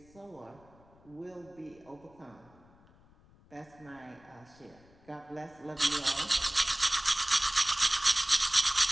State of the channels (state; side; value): noise; left; rumble, 28 dB below the sound